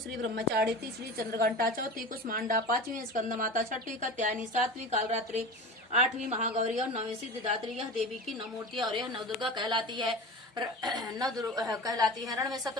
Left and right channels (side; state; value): both; normal; correlation 0.32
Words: ब्रह्मचारी, तीसरी चंद्रघंटा, चौथी कुष्मांडा, पांचवी स्कंद माता, छठी कात्यायनी, सातवीं कालरात्रि, आठवीं महागौरी और नौवीं सिद्धिदात्री। यह देवी की नौ मूर्तियां और यह नवदुर्गा कहलाती है। कहलाती है। रण में